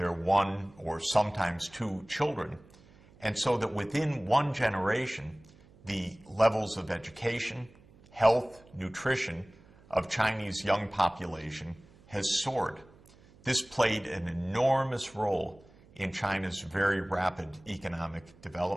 1 or sometimes 2 children. And so that within one generation, the levels of education, health, nutrition of Chinese young population has soared. This played an enormous role in China's very rapid economic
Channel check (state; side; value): noise; right; hum, 26 dB below the sound